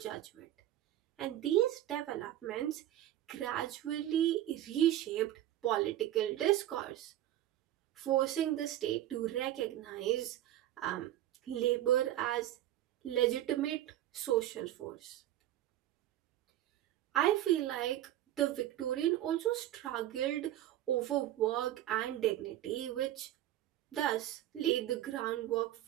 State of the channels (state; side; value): quieter; left; 13.2 dB